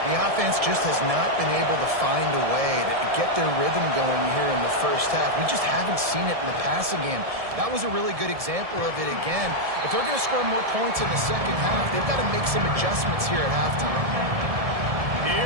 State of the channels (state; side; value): late; left; 1.7 ms